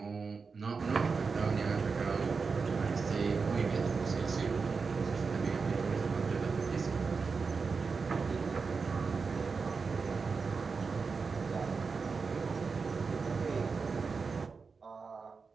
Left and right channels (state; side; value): quieter; left; 4.9 dB